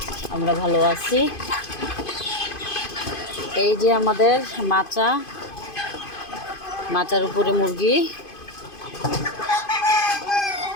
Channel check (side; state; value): right; late; 2.5 ms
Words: আমরা ভালো আছি। এই যে আমাদের মাচার উপরে মুরগি।